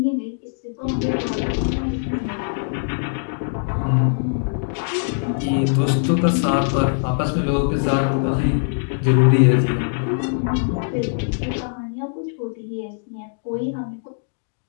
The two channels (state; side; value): silent; right; digital silence